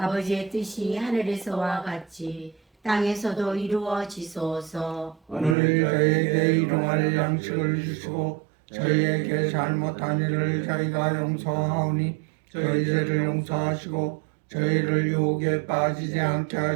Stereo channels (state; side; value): drops out; left; at 5.6 s